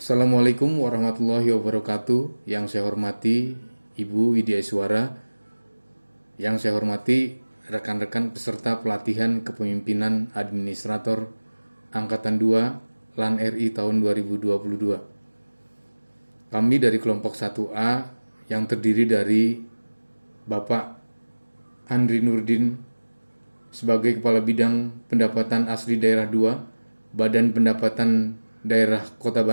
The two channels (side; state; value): both; inverted; correlation -1.00